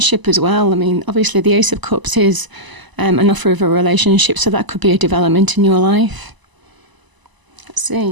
as well. I mean, obviously the Ace of Cups is an offer of a relationship. So that could be a development in your life. Let's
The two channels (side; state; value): left; late; 1.0 ms